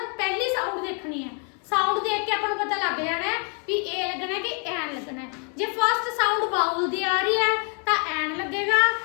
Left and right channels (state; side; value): quieter; right; 39.6 dB